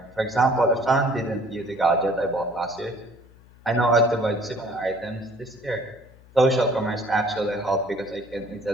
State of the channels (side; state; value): left; noise; hum, 25 dB below the sound